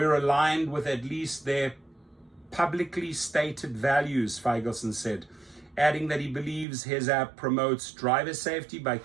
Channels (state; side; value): drops out; left; at 6.7 s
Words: aligned with at least their publicly stated values, Feigelson said, adding that he believes his app promotes driver safety by